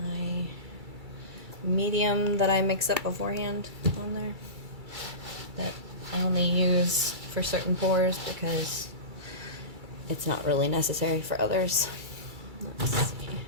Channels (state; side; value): late; left; 2.3 ms